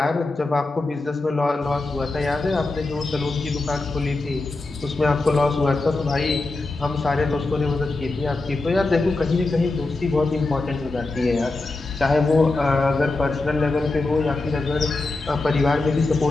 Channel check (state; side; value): quieter; right; 3.2 dB